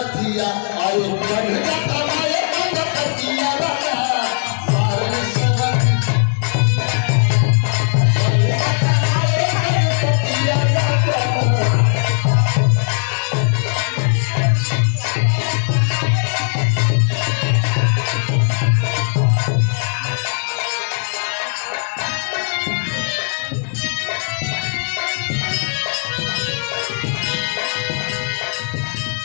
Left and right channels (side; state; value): right; silent; digital silence